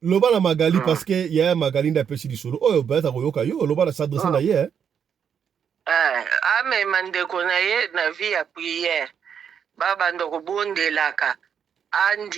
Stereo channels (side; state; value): left; quieter; 7.7 dB